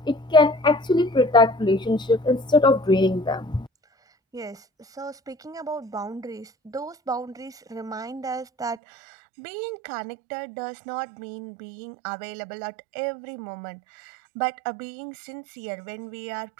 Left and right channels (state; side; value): drops out; left; at 8.8 s